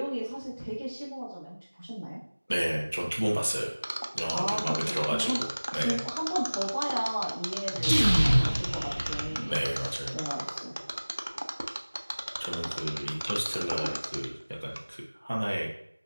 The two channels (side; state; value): both; inverted; correlation -1.00